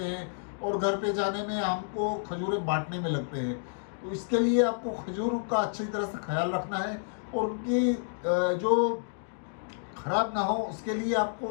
हैं, और घर पे जाने में हमको खजूरें बांटने में लगते हैं। तो इसके लिए आपको खजूर का अच्छी तरह से ख्याल रखना है, और उनकी जो ख़राब ना हो उसके लिए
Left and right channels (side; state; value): right; silent; digital silence